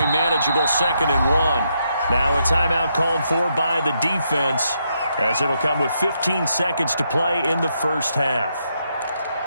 manageable 2nd and 1. Now a timeout called for by the defense, as it'll come with 15 seconds to play in the first half.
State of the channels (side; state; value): both; inverted; correlation -0.79